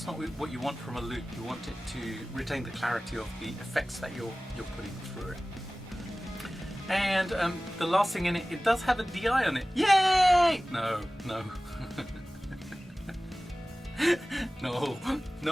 not what you want from a loop. You want it to retain the clarity of the effects that you're putting through it. And the last thing in it, it does have a DI on it. Yay! No. No.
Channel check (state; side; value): normal; both; correlation 0.97